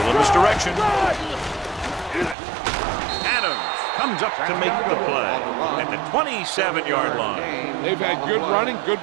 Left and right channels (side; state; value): left; drops out; at 2.4 s